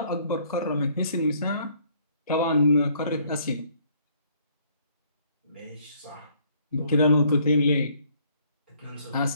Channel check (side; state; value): both; inverted; correlation -0.64